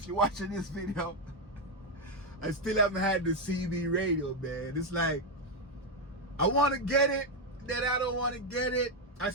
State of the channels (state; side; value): normal; both; correlation 0.05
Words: you're watching this video. I still haven't had the CB radio, man. It's like, I wanna get it, then I don't wanna get it. I